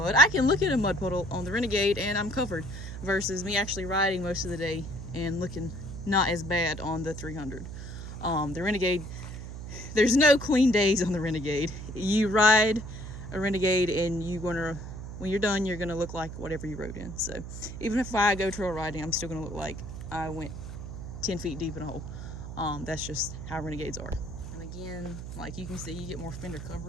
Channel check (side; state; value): right; noise; hum, 9 dB below the sound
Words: I can look at a mud puddle on the Renegade and I'm covered, versus me actually riding most of the day and looking not as bad on the 300. The Renegade, there's no clean days on the Renegade. You ride a Renegade and when you're done, you're gonna look like whatever you rode in. So even if I go trail riding, I'm still gonna look like I went 10 feet deep in a hole. That's just how Renegades are. And again, like you can see, you get more fender